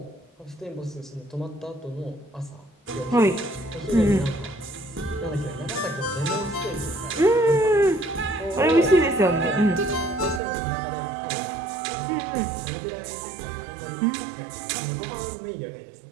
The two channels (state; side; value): drops out; left; at 10.4 s